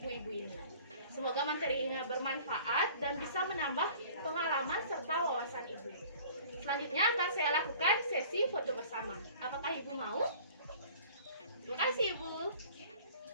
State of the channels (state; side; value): inverted; both; correlation -0.48